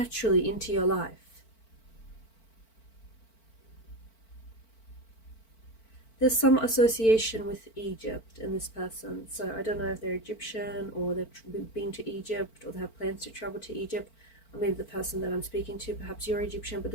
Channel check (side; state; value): right; late; 4.5 ms